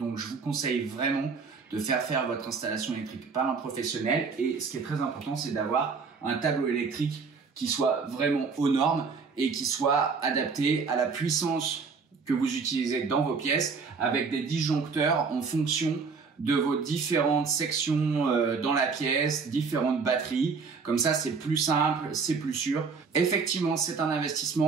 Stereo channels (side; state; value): left; quieter; 5.1 dB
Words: je vous conseille vraiment de faire votre installation électrique par un professionnel. Et ce qui est très important, c'est d'avoir un tableau électrique qui soit vraiment aux normes et qui soit adapté à la puissance que vous utilisez dans vos pièces, avec des disjoncteurs en fonction de vos différentes sections dans la pièce, différentes batteries. Comme ça, c'est plus simple, c'est plus sûr. Effectivement, c'est un